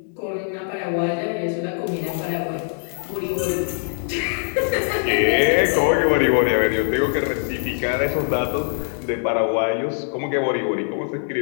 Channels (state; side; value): silent; right; digital silence